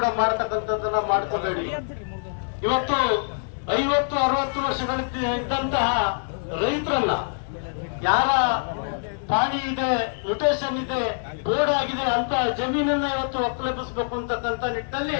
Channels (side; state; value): right; silent; digital silence